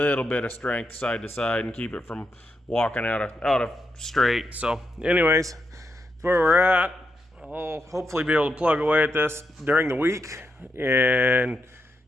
bit of strength side to side and keep it from walking out of straight. So anyways, that's where we're at. I'll hopefully be able to plug away at this during the week and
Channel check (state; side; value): normal; both; correlation 0.83